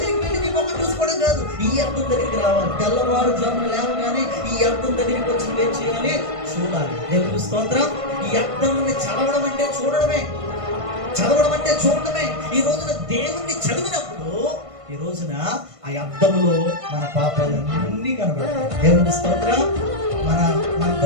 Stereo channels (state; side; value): late; left; 1.5 ms